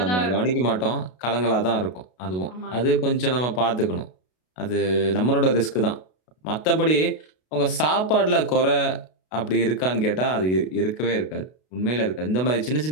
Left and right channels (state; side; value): late; right; 32 ms